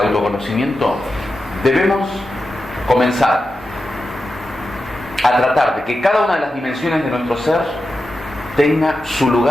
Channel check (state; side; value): normal; both; correlation 0.91